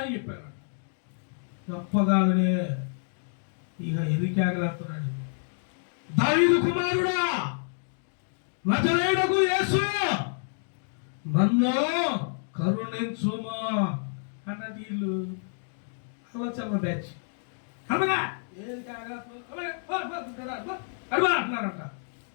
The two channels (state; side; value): silent; right; digital silence